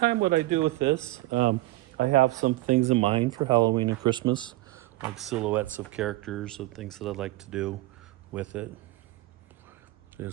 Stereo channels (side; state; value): left; quieter; 18.7 dB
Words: what I do with this. I have some things in mind for Halloween and Christmas, like silhouettes of characters and things that I'd like to do with it. You'll